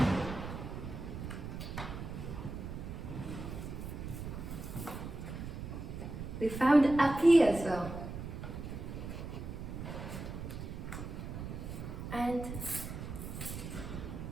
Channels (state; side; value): noise; right; rumble, 7 dB below the sound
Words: We found a P as well. And